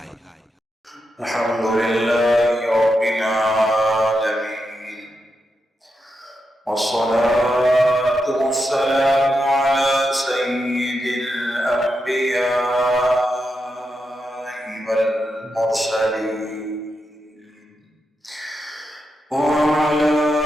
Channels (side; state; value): both; normal; correlation 0.86